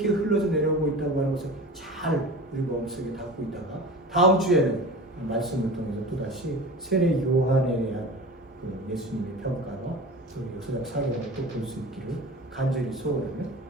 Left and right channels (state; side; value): normal; both; correlation 0.34